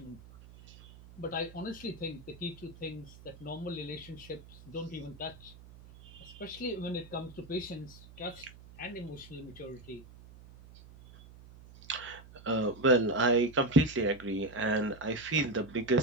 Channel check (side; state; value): right; noise; hum, 19 dB below the sound